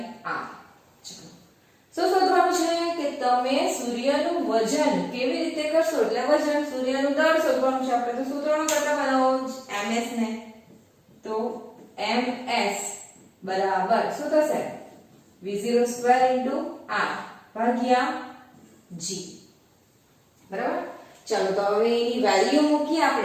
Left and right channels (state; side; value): identical; both; correlation 1.00